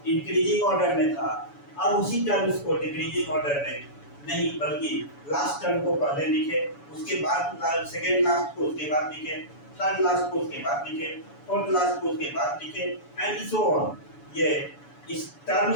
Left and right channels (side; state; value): right; late; 7.0 ms